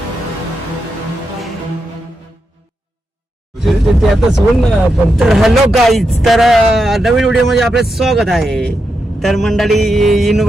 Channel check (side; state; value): both; normal; correlation 0.86